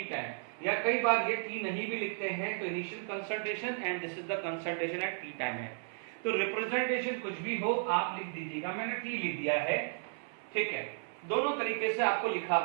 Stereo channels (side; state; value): left; silent; 55 dB below the other